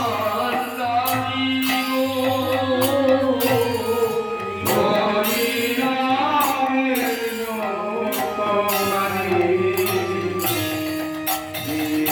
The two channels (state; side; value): identical; both; correlation 1.00